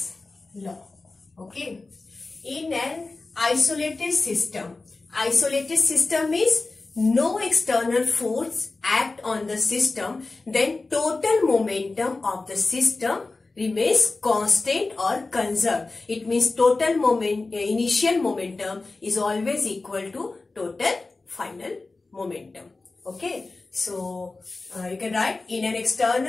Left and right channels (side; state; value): right; quieter; 3.5 dB